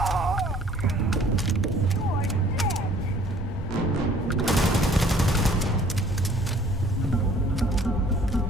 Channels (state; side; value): normal; both; correlation 0.56